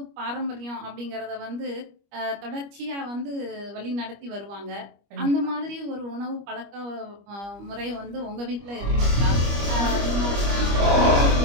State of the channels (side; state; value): left; late; 25 ms